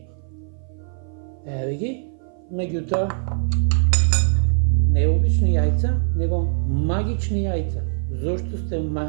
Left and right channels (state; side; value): silent; left; 57 dB below the other